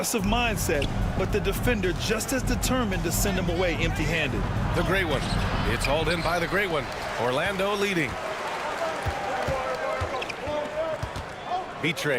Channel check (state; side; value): identical; both; correlation 1.00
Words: mindset, but the defender just as determined to send him away empty-handed. The great one. It's hauled in by the great one. Orlando leading.